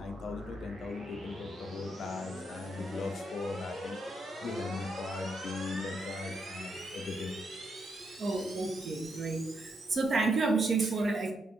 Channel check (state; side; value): normal; both; correlation 0.79